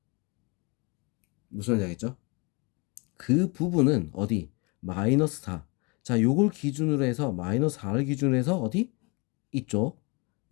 무슨 말인지 알겠죠? 그 부분은 어디? 마이너스 4. 자, 요걸 기준으로 해서 마이너스 4를 기준으로 해서 어디? 이쪽.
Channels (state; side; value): quieter; right; 29.4 dB